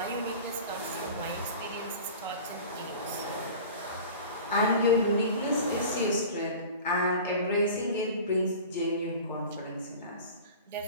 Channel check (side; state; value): both; inverted; correlation -0.38